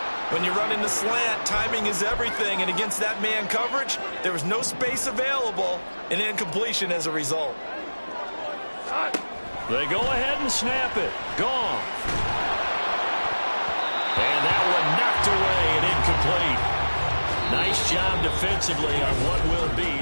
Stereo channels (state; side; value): inverted; both; correlation -1.00